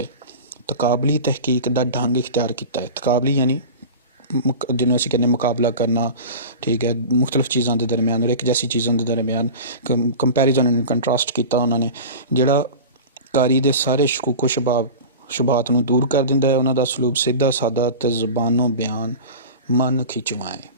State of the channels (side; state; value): both; inverted; correlation -0.32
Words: ਤਕਾਬਲੀ ਤਹਿਕੀਕ ਦਾ ਢੰਗ ਇਖਤਿਆਰ ਕੀਤਾ ਹੈ। ਤਕਾਬਲੀ ਯਾਨੀ ਜਿਹਨੂੰ ਅਸੀਂ ਕਹਿੰਦੇ ਮੁਕਾਬਲਾ ਕਰਨਾ, ਠੀਕ ਹੈ, ਮੁਖਤਲਿਫ ਚੀਜ਼ਾਂ ਦੇ ਦਰਮਿਆਨ ਔਰ ਇੱਕ ਜੈਸੀ ਚੀਜ਼ਾਂ ਦੇ ਦਰਮਿਆਨ ਕੰਪੈਰੀਜ਼ਨ ਐਂਡ ਕੰਟਰਾਸਟ ਕੀਤਾ ਉਹਨਾਂ ਨੇ। ਜਿਹੜਾ ਕਾਰੀ ਦੇ ਸਾਰੇ ਸ਼ਕੂਕੋ ਸ਼ੁਬਾਤ ਨੂੰ ਦੂਰ ਕਰ ਦਿੰਦਾ ਹੈ। ਉਹਨਾਂ ਦਾ ਸਲੂਕ ਸਿੱਧਾ ਸਾਦਾ ਅਤੇ ਜ਼ਬਾਨੋਂ ਬਿਆਨ ਮਨ ਖਿੱਚਵਾਂ